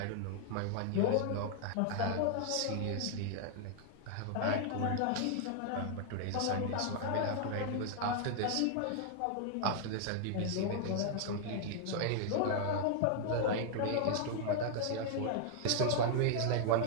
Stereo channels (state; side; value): different; both; correlation 0.00